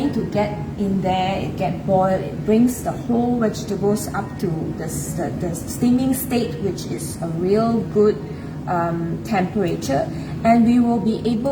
to get in there, it get boiled, it brings the whole vegetables up to the steaming state, which is a real good temperature, and we will be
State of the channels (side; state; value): both; identical; correlation 1.00